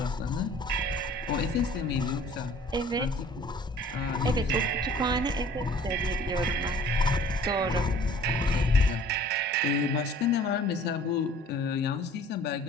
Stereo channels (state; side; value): normal; both; correlation 0.51